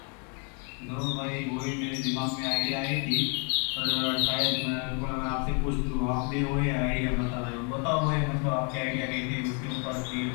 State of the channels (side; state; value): right; quieter; 37.0 dB